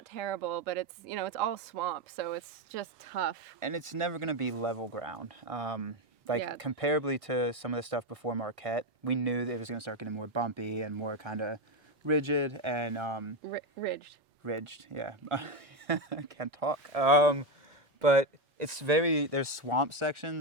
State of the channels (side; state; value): both; normal; correlation 0.11